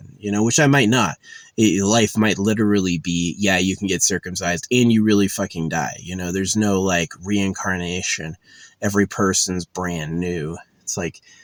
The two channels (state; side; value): identical; both; correlation 1.00